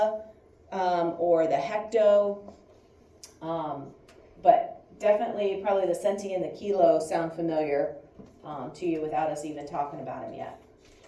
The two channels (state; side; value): identical; both; correlation 1.00